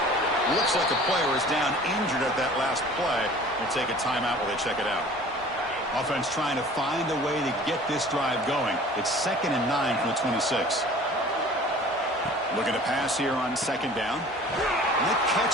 Looks like a player is down injured at that last play. We'll take a timeout while they check it out. Offense trying to find a way to get this drive going. It's 2nd and 9 from the 26. Looking to pass here on 2nd down. And the catch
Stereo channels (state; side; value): normal; both; correlation 0.46